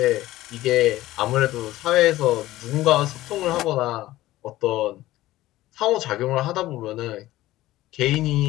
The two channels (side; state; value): right; quieter; 16.2 dB